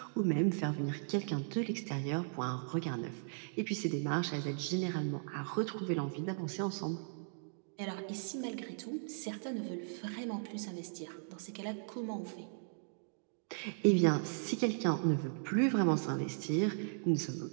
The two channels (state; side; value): silent; left; digital silence